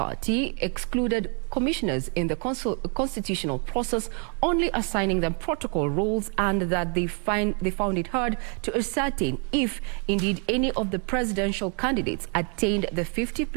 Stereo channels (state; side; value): quieter; left; 38.4 dB